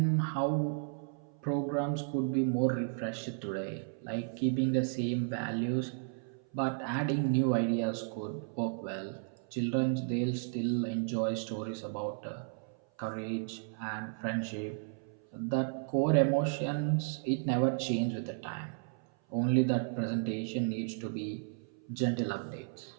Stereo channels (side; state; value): left; silent; 55 dB below the other